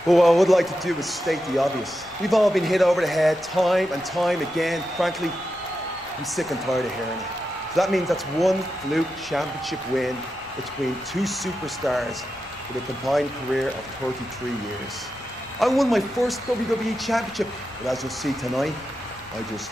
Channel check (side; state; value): left; noise; rumble, 25 dB below the sound